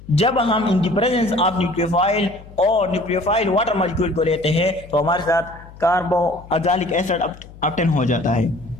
जब हम in the presence of nucleophile और न्यूक्लियोफाइल वाटर मॉलिक्यूल को लेते हैं तो हमारे साथ कार्बोक्सिलिक एसिड ऑब्टेन हो जाता है।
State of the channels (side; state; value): left; noise; hum, 19 dB below the sound